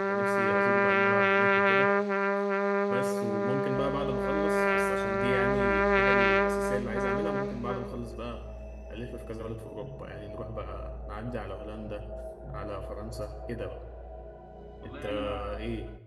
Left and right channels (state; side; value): identical; both; correlation 1.00